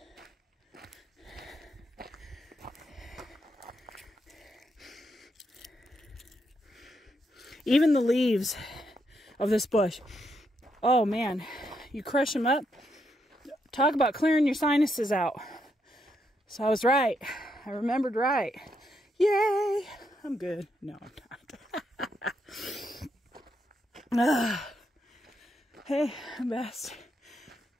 Even the leaves of this bush, oh man, you crush them up, talk about clearing your sinuses out. So I was right. I remembered right. Yay! I'm good. No, I'm not. Hey, I'm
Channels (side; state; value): both; normal; correlation 0.79